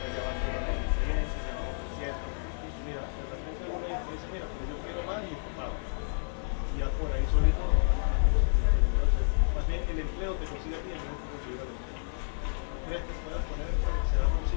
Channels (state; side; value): silent; right; digital silence